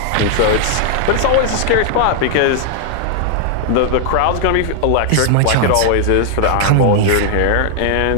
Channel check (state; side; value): different; both; correlation 0.00